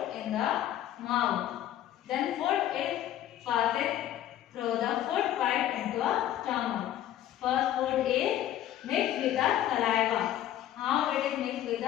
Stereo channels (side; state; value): right; quieter; 12.1 dB